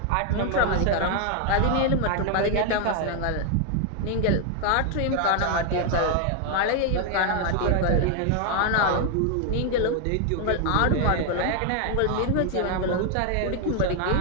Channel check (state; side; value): different; both; correlation 0.00